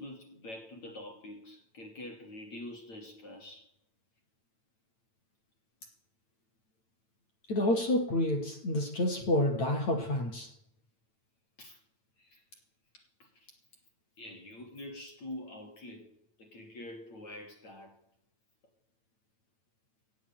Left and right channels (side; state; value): right; late; 9.0 ms